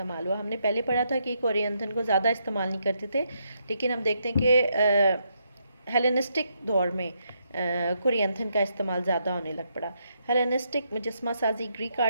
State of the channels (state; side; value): inverted; both; correlation -0.78